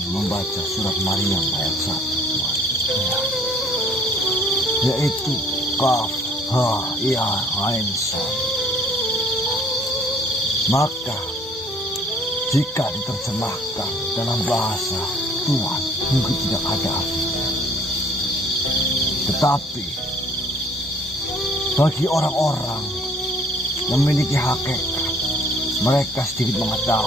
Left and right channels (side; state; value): both; normal; correlation 0.57